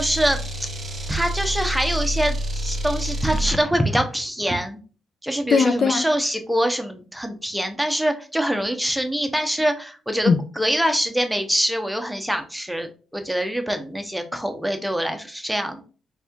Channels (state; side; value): normal; both; correlation 0.91